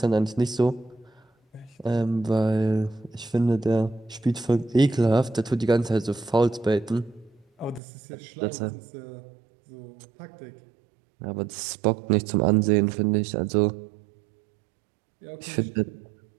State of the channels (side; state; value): left; drops out; at 7.8 s